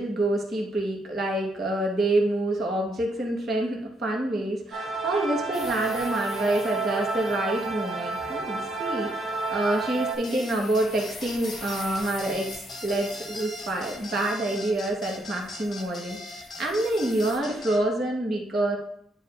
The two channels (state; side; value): normal; both; correlation 0.74